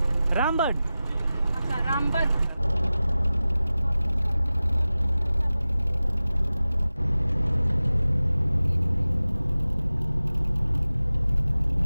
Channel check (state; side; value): inverted; both; correlation -0.96